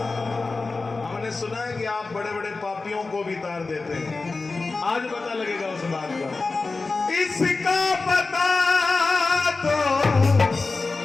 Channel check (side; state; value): right; quieter; 3.8 dB